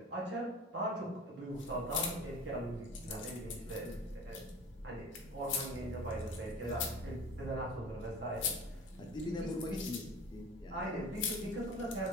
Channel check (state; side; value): normal; both; correlation 0.39